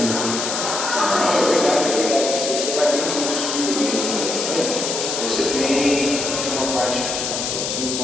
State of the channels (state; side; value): noise; left; hiss, 2 dB below the sound